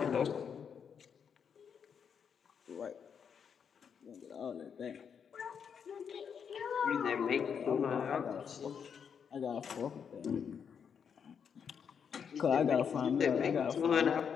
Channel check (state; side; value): quieter; right; 7.1 dB